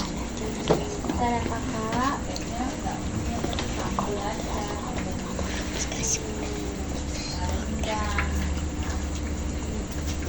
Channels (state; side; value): identical; both; correlation 1.00